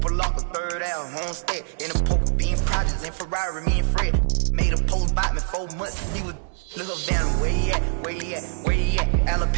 Lock a third out, homestead in a poker bean projects in Ferrari, me and Fred made a post about me 4 months. He was look up down where he at,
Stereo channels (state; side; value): silent; left; digital silence